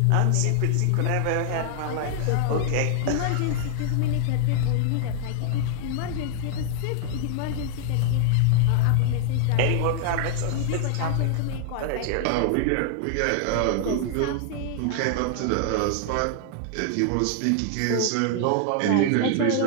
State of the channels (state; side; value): different; both; correlation 0.00